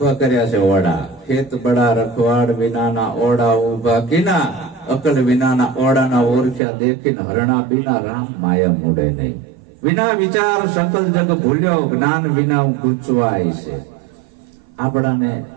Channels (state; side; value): drops out; left; at 6.6 s